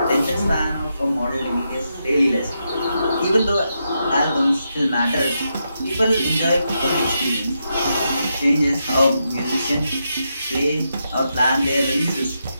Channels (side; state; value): both; inverted; correlation -0.84